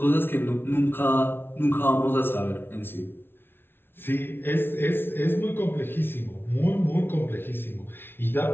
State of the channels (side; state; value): right; late; 0.11 ms